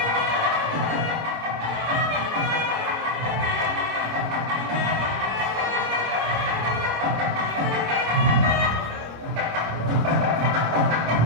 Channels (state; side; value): late; left; 26 ms